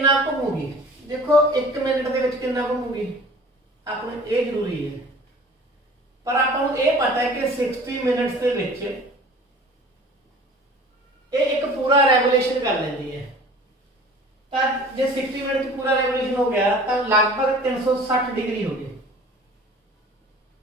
घूमूगी? देखो 1 मिनट दे विच कितना घूमूगी आपने ये जरूरी है, पर आपको ये पता है कि 60 मिनट्स के विच ये एक पूरा रेवोल्यूशन कर लेती है। तो जो 60 मिनट पूरा रेवोल्यूशन हो गया तो लगभग 360 डिग्री हो गई।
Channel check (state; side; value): normal; both; correlation 0.45